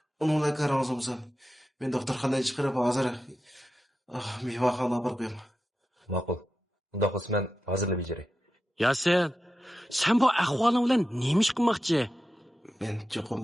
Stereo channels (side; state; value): both; normal; correlation 0.91